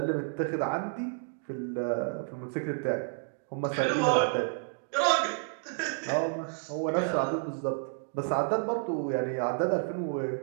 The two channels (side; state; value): left; silent; 57 dB below the other